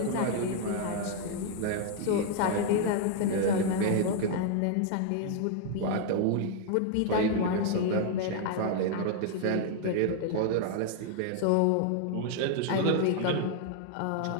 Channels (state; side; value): different; both; correlation 0.00